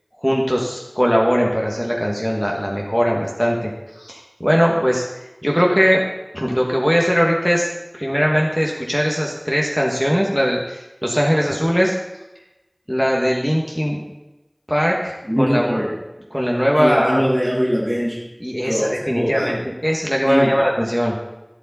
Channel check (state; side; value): identical; both; correlation 1.00